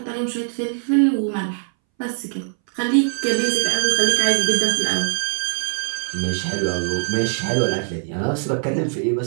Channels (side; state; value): left; silent; 63 dB below the other